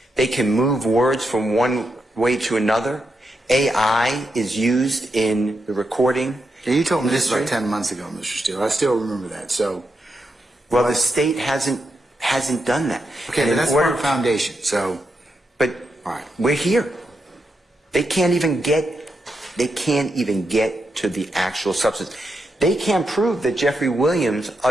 They can move words from one way to another. AI is used in the recording. Yeah, you told me this about 10 months ago, Mr. Steele. I still remember that. So, Well, the state hasn't done that. okay, And but in that's order- part of foundation. So, But all right. we're here. They can't even get to the actual substance. They can't prove that Jeffrey Williams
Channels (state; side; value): normal; both; correlation 0.84